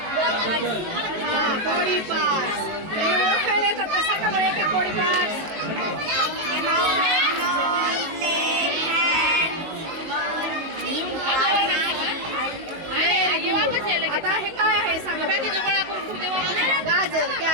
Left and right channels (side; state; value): left; late; 19 ms